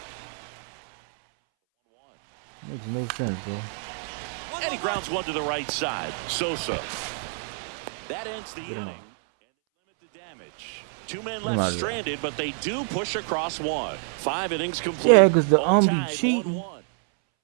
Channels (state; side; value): silent; left; 60 dB below the other